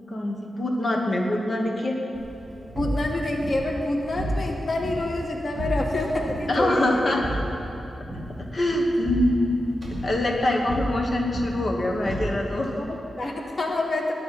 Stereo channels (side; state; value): both; normal; correlation 0.89